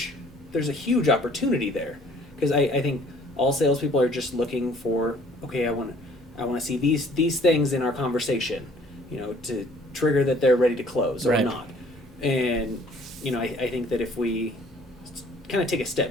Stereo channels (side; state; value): both; normal; correlation 0.56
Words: huge opportunity there, because I think all salespeople are just looking for, okay, I want to see these things in our conversation, to trigger that they're ready to close or not. And I think that if we kind of take a